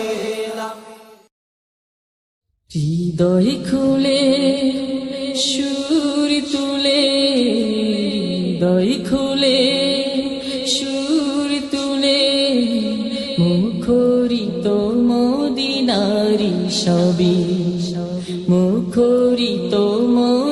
হৃদয় খুলে সুর তুলে, হৃদয় খুলে সুর তুলে, মুখরিত মদিনারি সবই, মুখরিত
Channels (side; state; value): both; identical; correlation 1.00